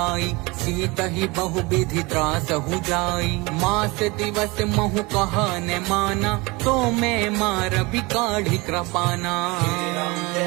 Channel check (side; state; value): left; quieter; 24.8 dB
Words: सीत ही बहु विधि त्रास हु जाई। मास दिवस महु कहा न माना, तो मैं मार भी काढ़ी कृपाना। राम